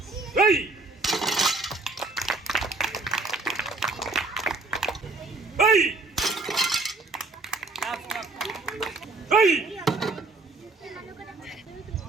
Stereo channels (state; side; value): quieter; left; 3.4 dB